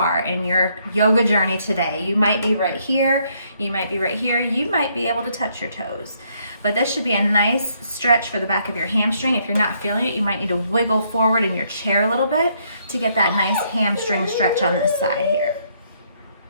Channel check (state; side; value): inverted; both; correlation -0.71